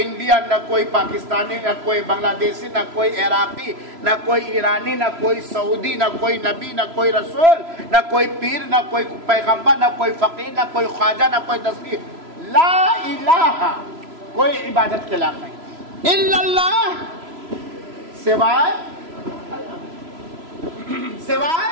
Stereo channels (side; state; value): left; late; 3.0 ms